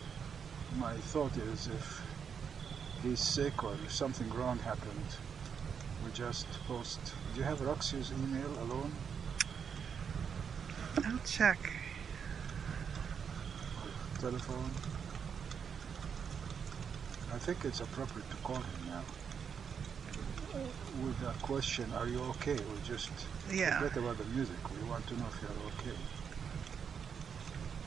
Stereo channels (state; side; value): quieter; left; 7.0 dB